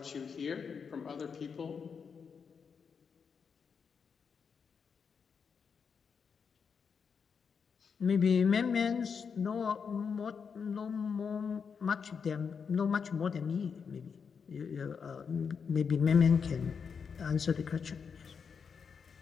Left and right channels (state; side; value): quieter; right; 6.2 dB